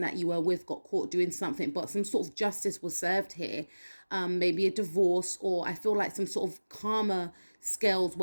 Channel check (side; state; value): both; inverted; correlation -1.00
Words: that you were with got caught doing something, but some sort of justice was served here. Maybe a divorce, or I feel like some sort of karma scales